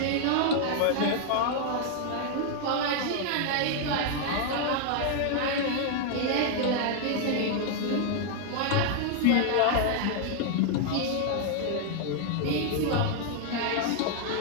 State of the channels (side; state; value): both; different; correlation 0.00